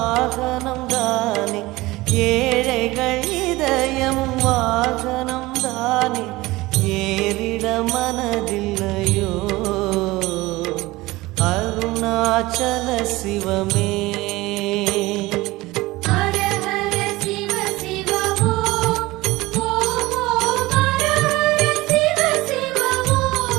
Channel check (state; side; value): quieter; left; 19.9 dB